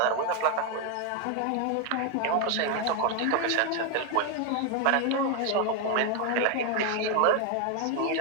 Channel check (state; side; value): different; both; correlation 0.01